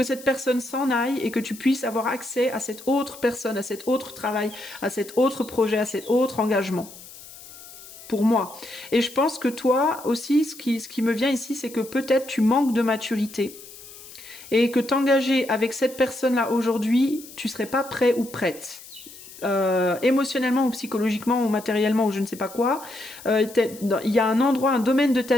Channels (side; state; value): left; noise; hiss, 17 dB below the sound